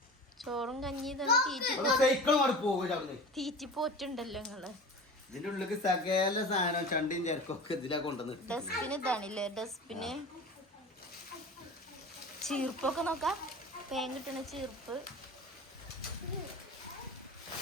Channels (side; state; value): both; normal; correlation 0.35